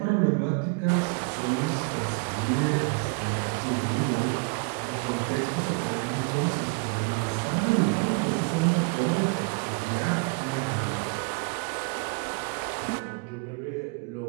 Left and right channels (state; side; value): quieter; left; 31.3 dB